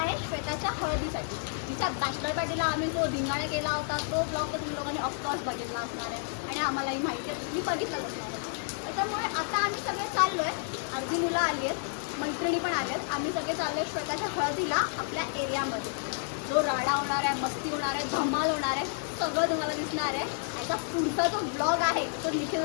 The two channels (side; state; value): right; silent; 58 dB below the other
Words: आहे श्वेताच्या हळदीसाठी. तिच्या बॅचलर पार्टीला आम्ही जो धिंगाणा केला होता तो ब्लॉग तर तुम्ही लोकांनी ऑफकोर्स बघितला असणार आहे आणि आम्हालाही माहिती आहे, तुम्ही बघितलाच असणार आहे. त्याच्यामुळे आता आम्ही सगळे चाललो आहे. अर्धी मुलं आली आहेत, मैत्रिणी पण आल्या आहेत. आम्ही सगळे चाललो आहे श्वेताच्या हळदीला आपल्या एरियामध्ये. जो राडा होणार आहे, मस्ती होणार आहे, धमाल होणार आहे, सगळं तुम्हाला दिसणार आहे. याचा पुढचा जो ब्लॉग आहे तो निखिल